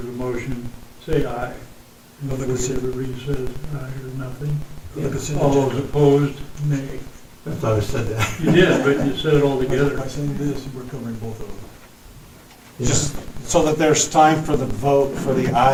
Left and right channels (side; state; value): both; identical; correlation 1.00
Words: the motion, say aye. And everybody says aye or nothing. All those opposed, nay. I thought I said that. You did, but you said it all together. By saying this, we're covering both of them. Yeah. Just so that there's time for the vote for the